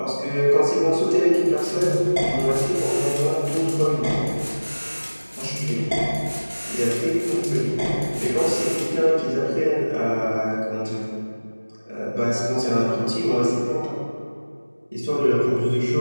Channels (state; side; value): inverted; both; correlation -1.00